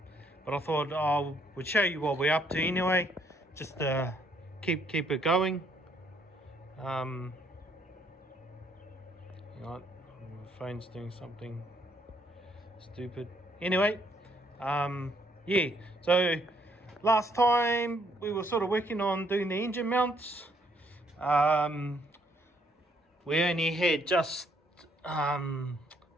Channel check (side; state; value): both; normal; correlation 0.69